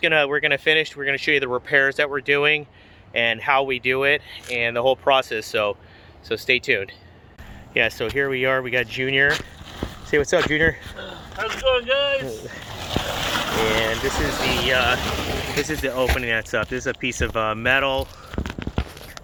finish. We're gonna show you the repairs that we're doing and how we do it and the whole process. So stay tuned. Yeah. So here we are. We got Junior. Say what's up, Junior. How's it going, guys? And this is the opening that's up. This is a piece of metal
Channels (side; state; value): both; identical; correlation 1.00